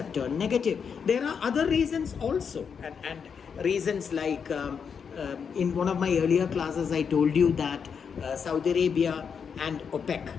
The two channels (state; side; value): quieter; right; 6.6 dB